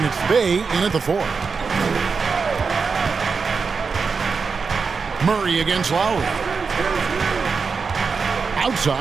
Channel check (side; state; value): left; quieter; 5.1 dB